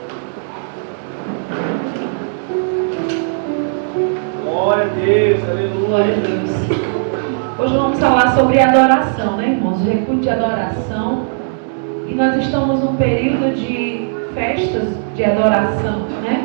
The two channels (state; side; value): silent; left; 68 dB below the other